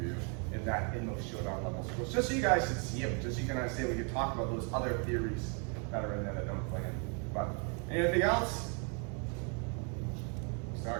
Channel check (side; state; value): left; quieter; 38.0 dB